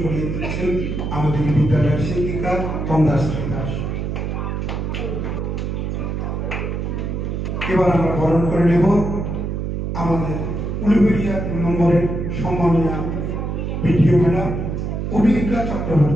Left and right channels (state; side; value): noise; right; hum, 3 dB below the sound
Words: করিয়ে দিচ্ছেন আমাদের বিদ্যালয়ের শিক্ষিকা তন্দাশ্রী দাস। এবার আমরা বরণ করে নেব আমাদের উলুবেড়িয়া 2 নম্বরের সম্মানীয় ভিডিও ম্যাডাম অভিজ্ঞা